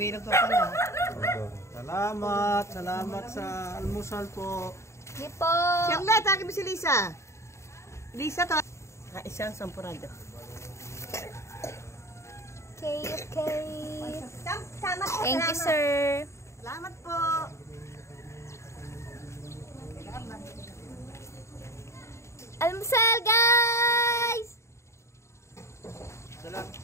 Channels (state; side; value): late; right; 0.14 ms